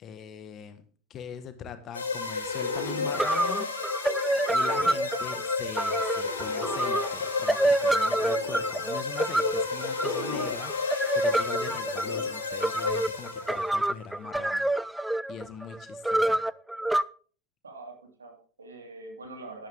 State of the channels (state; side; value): normal; both; correlation 0.51